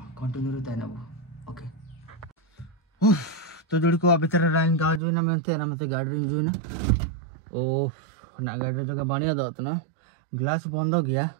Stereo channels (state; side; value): drops out; left; at 5.0 s